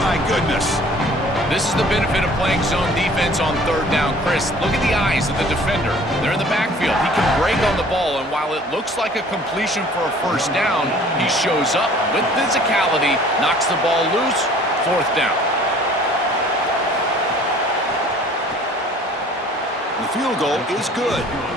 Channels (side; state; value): both; normal; correlation 0.52